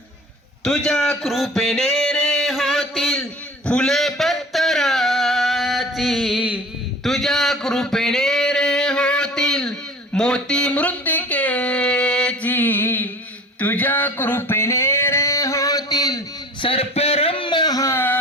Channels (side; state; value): both; normal; correlation 0.42